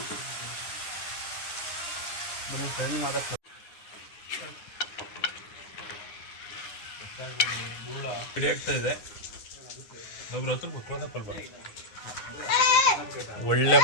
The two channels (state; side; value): late; right; 9.7 ms